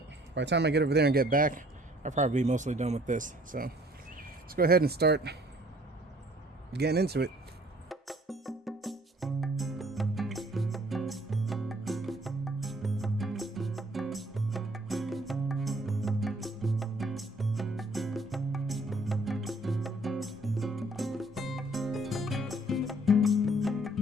by the time I get over there and get back, I'll probably be mostly done with this. So let's go ahead and start getting into it.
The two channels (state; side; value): normal; both; correlation 0.58